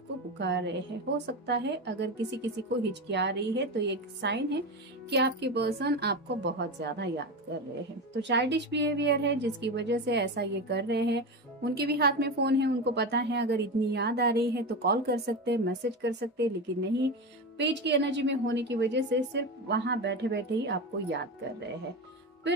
पुकार रहे हैं। हो सकता है अगर किसी किसी को हिचकिया रही है तो ये एक साइन है कि आपके पर्सन आपको बहुत ज्यादा याद कर रहे हैं। तो चाइल्डिश बिहेवियर है जिसकी वजह से ऐसा ये कर रहे हैं। उनके भी हाथ में फोन है, उनको पता है अगर इतनी याद आ रही है तो कॉल कर सकते हैं, मैसेज कर सकते हैं, लेकिन नहीं, पेज की एनर्जी में होने की वजह से सिर्फ वहां बैठे बैठे ही आपको याद कर रहे हैं।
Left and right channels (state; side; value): normal; both; correlation 0.20